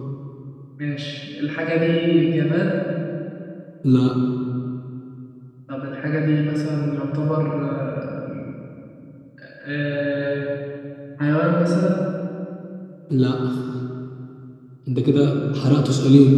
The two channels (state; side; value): identical; both; correlation 1.00